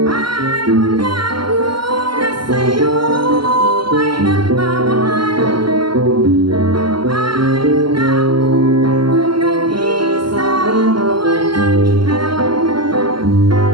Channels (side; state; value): left; late; 0.73 ms